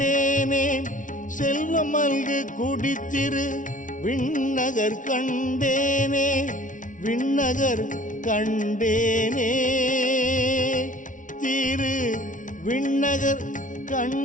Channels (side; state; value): right; late; 0.37 ms